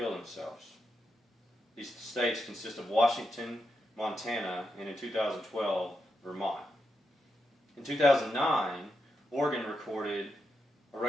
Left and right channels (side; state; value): both; normal; correlation 0.85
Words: themselves. These states consist of Washington, Montana, and in 2012, Vermont. In 2009, Oregon recorded a